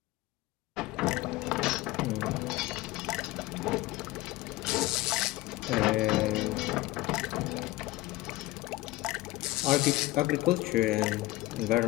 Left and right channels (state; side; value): quieter; right; 18.7 dB